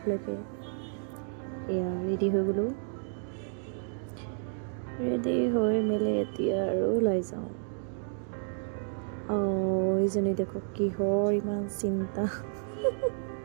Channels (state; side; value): silent; left; 57 dB below the other